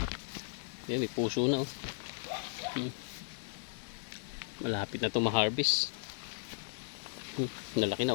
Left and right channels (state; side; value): silent; right; digital silence